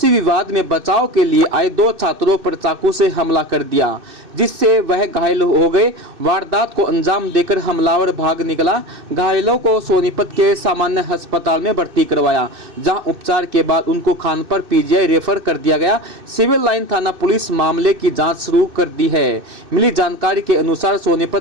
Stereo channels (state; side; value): late; left; 2.6 ms